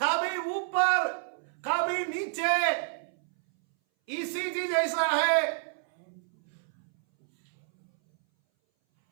ऊपर कभी नीचे। ईसीजी जैसा है।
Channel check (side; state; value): left; silent; 59 dB below the other